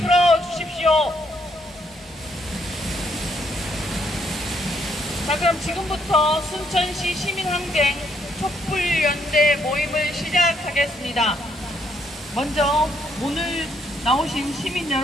자, 그럼 지금부터 순천시 시민항쟁 촛불연대 모임을 시작하겠습니다. 먼저 오늘 나오신 시민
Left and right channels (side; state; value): both; normal; correlation 0.72